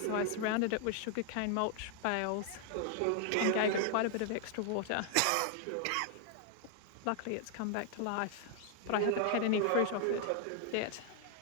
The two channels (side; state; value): both; different; correlation 0.00